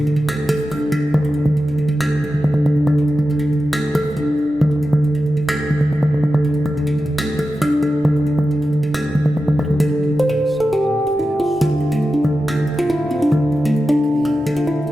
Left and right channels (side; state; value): both; normal; correlation 0.92